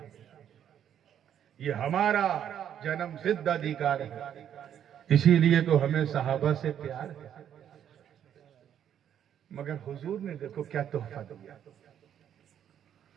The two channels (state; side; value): quieter; left; 9.6 dB